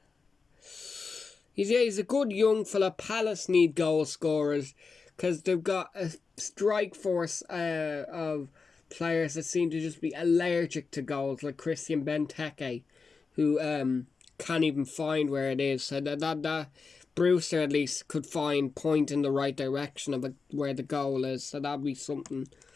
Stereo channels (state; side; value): quieter; right; 4.7 dB